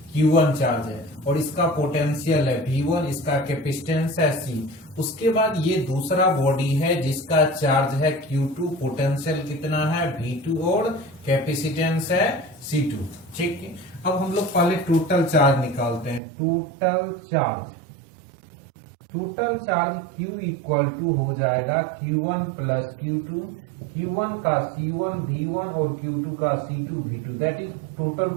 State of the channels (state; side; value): drops out; left; at 16.2 s